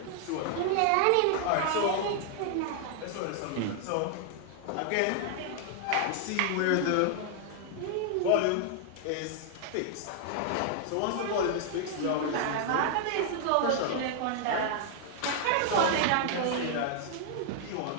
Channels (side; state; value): both; different; correlation 0.00